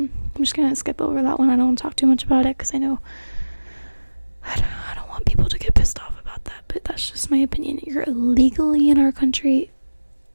just gonna skip over that one. I don't want to talk too much about it because I know I don't want people to get pissed off about that, but that's just my opinion. You're illegally in our country.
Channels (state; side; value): inverted; both; correlation -1.00